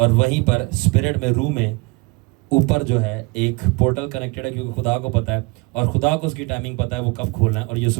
وہیں پر اسپرٹ میں روح میں اوپر جو ہے ایک پورٹل کنیکٹڈ ہے, کیونکہ خدا کو پتہ ہے اور خدا کو اس کی ٹائمنگ پتہ ہے وہ کب کھولنا ہے, اور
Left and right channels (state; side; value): quieter; left; 26.6 dB